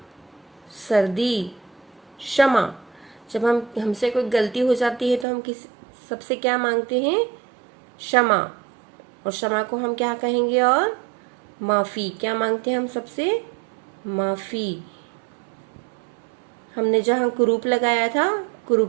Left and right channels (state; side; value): drops out; left; at 5.2 s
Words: सर्दी, क्षमा। जब हमसे कोई गलती हो जाती है तो हम सबसे क्या मांगते हैं? क्षमा। और क्षमा को हम क्या कहेंगे? और माफी। क्या मांगते हैं हम सबसे? माफी। हमने जहाँ कुरूप लगाया था,